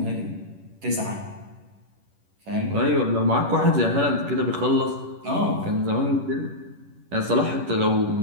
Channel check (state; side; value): late; left; 11 ms